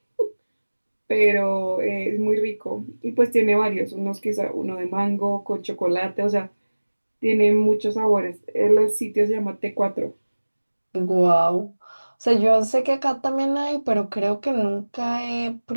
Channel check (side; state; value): both; inverted; correlation -1.00